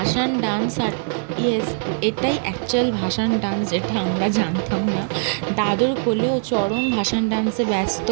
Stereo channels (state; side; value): silent; left; 63 dB below the other